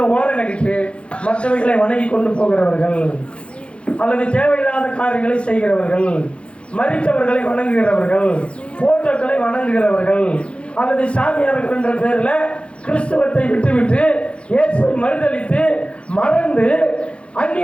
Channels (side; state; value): right; late; 0.059 ms